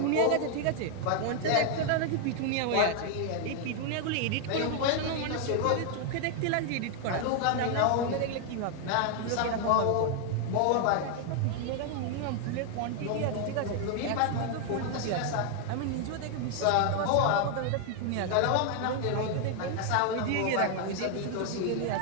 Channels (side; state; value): both; different; correlation 0.00